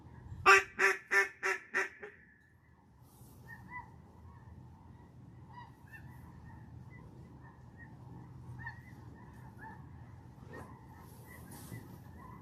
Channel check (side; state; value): both; identical; correlation 1.00